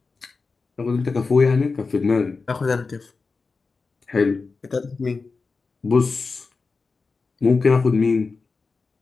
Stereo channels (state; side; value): quieter; right; 4.3 dB